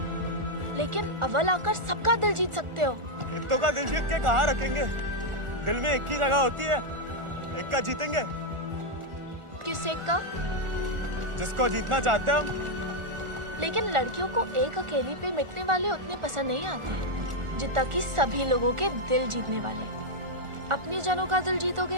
लेकिन अव्वल आकर सबका दिल जीत सकते हो। इत्तो का दिल जीत के कहाँ रखेंगे? दिल में एक ही जगह होती है, एक का जीतेंगे। किस एक का? जिसको जीतना चाहते हैं हम। लेकिन लड़कियों को एक अकेली पे मिटने वाले उतने पसंद नहीं आते जितना कि सभी लोगों के दिल जीतने वाले। अपनी जनों का दिल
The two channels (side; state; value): left; late; 1.4 ms